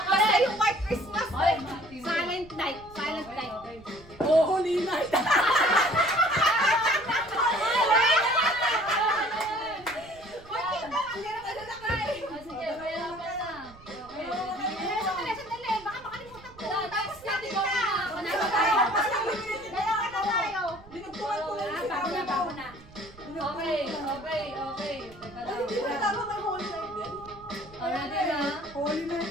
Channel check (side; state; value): right; noise; rumble, 22 dB below the sound